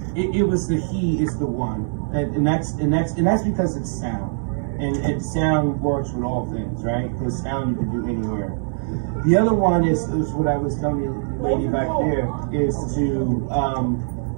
It was the he is the one, and that's because it's sound, and sound works with all things, right? Because sound you can do anywhere. The other one is what I was telling you, lady back there, is to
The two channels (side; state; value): left; silent; digital silence